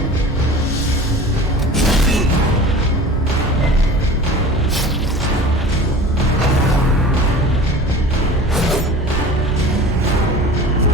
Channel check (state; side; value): normal; both; correlation 0.38